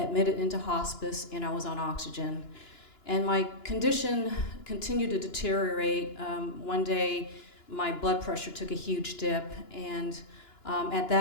into hospice, and I was on oxygen. And my condition continued to deteriorate. One day, my blood pressure took a huge dip, and at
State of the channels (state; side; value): late; right; 2.9 ms